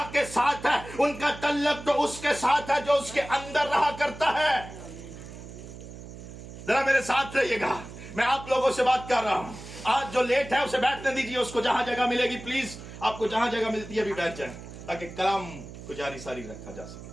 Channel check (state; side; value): noise; right; hum, 14 dB below the sound